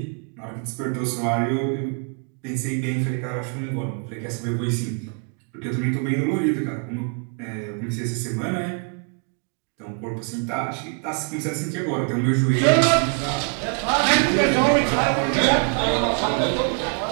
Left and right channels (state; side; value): quieter; left; 39.3 dB